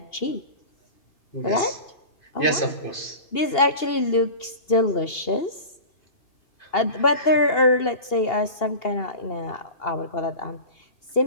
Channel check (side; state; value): right; late; 2.8 ms